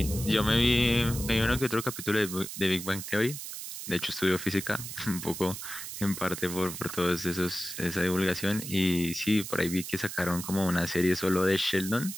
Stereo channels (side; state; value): right; noise; hiss, 8 dB below the sound